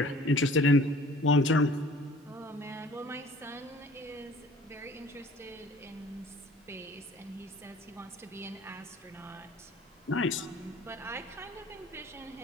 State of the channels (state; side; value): normal; both; correlation 0.49